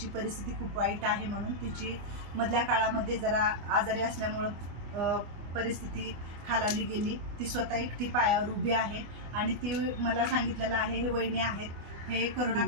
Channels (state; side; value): late; left; 24 ms